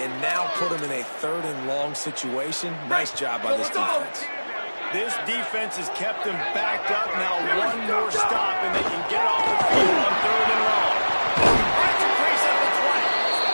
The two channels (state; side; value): inverted; both; correlation -1.00